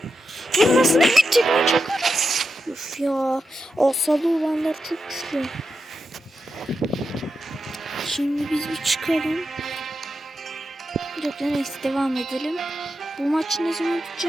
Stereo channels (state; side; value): normal; both; correlation 0.87